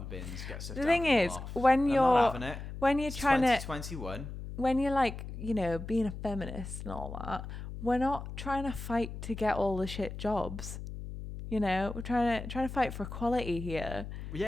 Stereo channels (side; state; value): left; noise; hum, 9 dB below the sound